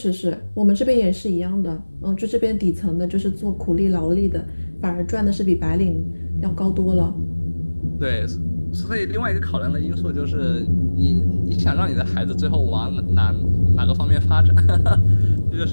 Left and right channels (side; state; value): both; inverted; correlation -1.00